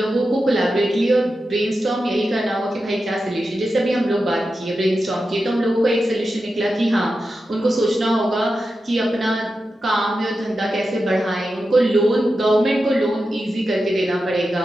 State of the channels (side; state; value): both; normal; correlation 0.90